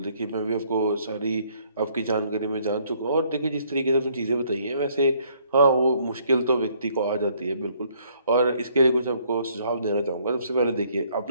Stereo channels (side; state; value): both; inverted; correlation -0.65